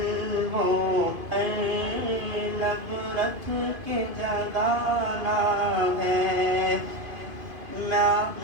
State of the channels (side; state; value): left; late; 2.5 ms